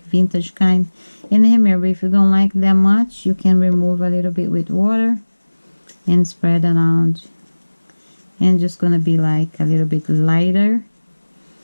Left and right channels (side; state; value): both; inverted; correlation -1.00